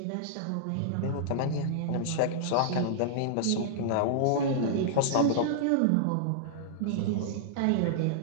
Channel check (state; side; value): different; both; correlation -0.02